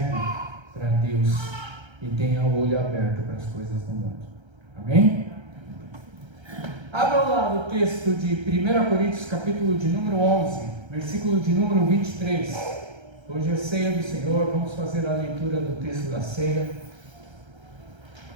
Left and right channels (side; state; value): left; late; 1.3 ms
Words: para Deus e tenha o olho aberto para as coisas do mundo. Amém? Abram lá no texto de 1 Coríntios, capítulo de número 11, versículo de número 23. Hoje é ceia do Senhor, vamos fazer a leitura do texto da ceia.